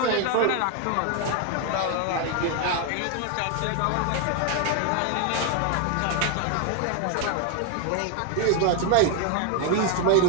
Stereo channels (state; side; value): different; both; correlation 0.01